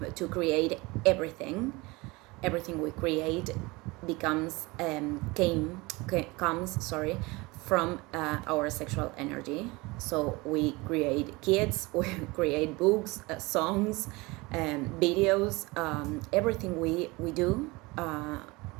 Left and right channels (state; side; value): quieter; left; 23.7 dB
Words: to create everything. Everything we create comes from our sexual energy. So we create kids, we create books, songs, videos, everything we do.